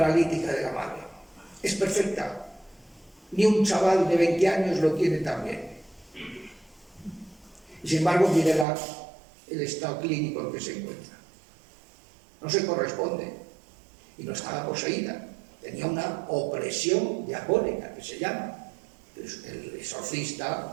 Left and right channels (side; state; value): left; drops out; at 8.7 s